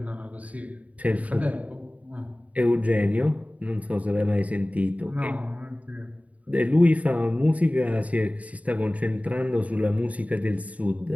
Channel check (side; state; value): left; late; 0.069 ms